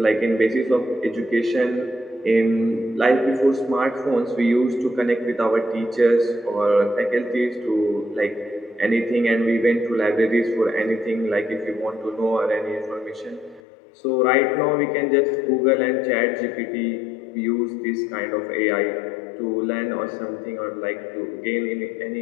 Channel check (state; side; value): drops out; right; at 13.6 s